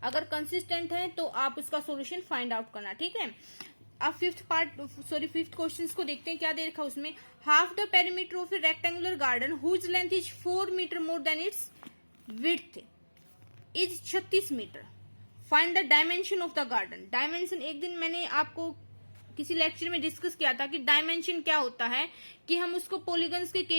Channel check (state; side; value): inverted; both; correlation -1.00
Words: अगर कंसिस्टेंट है तो आप उसका सॉल्यूशन फाइंड आउट करना। ठीक है, अब फिफ्थ क्वेश्चन को देखते हैं, क्या दे रखा उसमें। Half the perimeter of a rectangular garden whose length is 4 metre more than its width is 36 metre. Find the dimension of the garden. Dimension एक दिन मैंने आपको किसी लेक्चर में डिस्कस किया था कि डायमेंशन क्या होता है, कि हम उसको पॉलीगन्स के